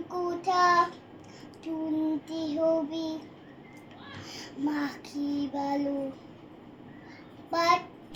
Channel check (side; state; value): both; identical; correlation 1.00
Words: কথা শুনতে হবে, মা কি ভালো